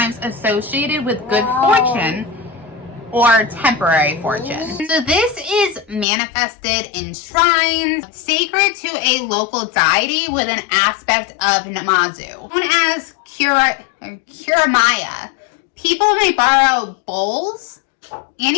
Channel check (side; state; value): right; drops out; at 6.1 s